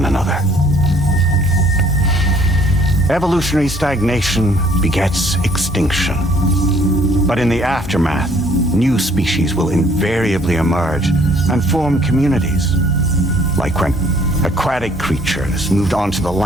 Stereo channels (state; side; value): normal; both; correlation 0.60